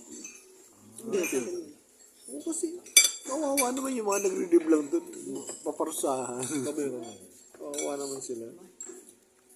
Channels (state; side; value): identical; both; correlation 1.00